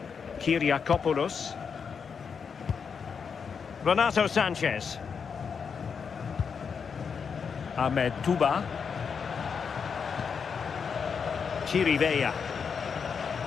Kyriakopoulos. Renato Sanchez. Ahmed Touba. Chirivella.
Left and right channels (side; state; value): right; quieter; 6.2 dB